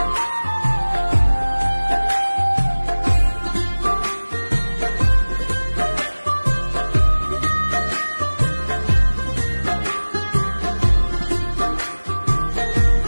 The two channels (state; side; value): inverted; both; correlation -1.00